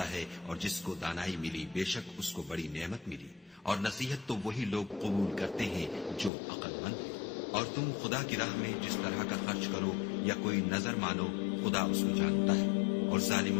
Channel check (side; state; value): right; drops out; at 6.3 s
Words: ہے، اور جس کو دانائی ملی بے شک اس کو بڑی نعمت ملی، اور نصیحت تو وہی لوگ قبول کرتے ہیں جو عقل مند ہیں۔ اور تم خدا کی راہ میں جس طرح کا خرچ کرو یا کوئی نظر مانو، خدا اس کو جانتا ہے، اور